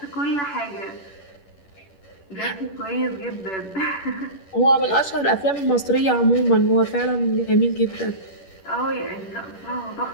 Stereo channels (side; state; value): right; late; 10 ms